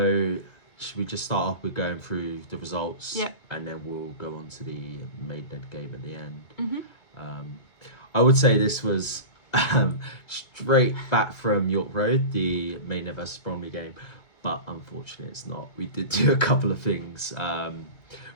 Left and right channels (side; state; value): right; late; 2.2 ms